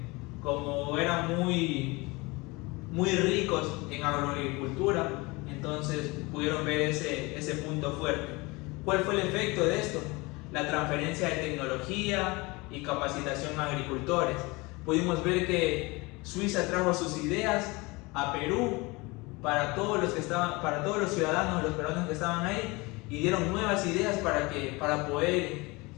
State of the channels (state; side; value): quieter; right; 24.6 dB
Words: Como eran muy ricos en agroagricultura, entonces pudieron ver ese punto fuerte. ¿Cuál fue el efecto de esto? La transferencia de tecnología y capacitación a agricultores. Pudimos ver que Suiza trajo sus ideas a Perú para todos los ciudadanos, los peruanos que estaban ahí, y dieron nuevas ideas para poder